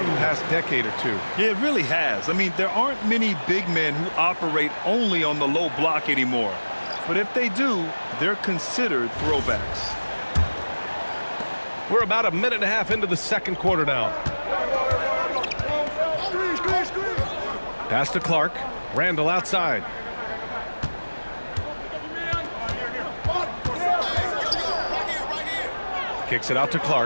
the past decade or two. Yeah, it really has. I mean, there aren't many big men who operate only on the low block anymore. But if they do, they're considered throwbacks. We're about a minute and a half into the second quarter now. Pass to Clark. Randall outside. Kicks it out to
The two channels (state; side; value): inverted; both; correlation -1.00